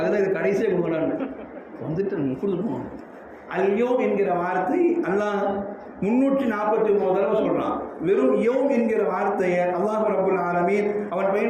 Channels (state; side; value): identical; both; correlation 1.00